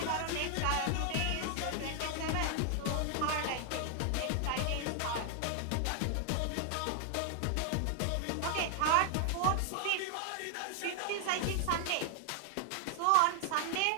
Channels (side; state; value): both; different; correlation 0.00